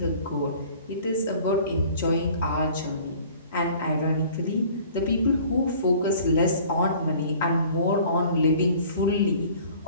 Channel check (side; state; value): both; inverted; correlation -0.50